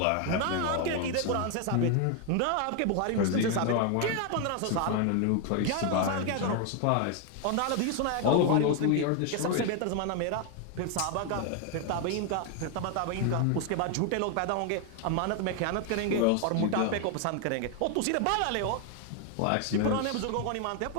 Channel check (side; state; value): both; different; correlation 0.01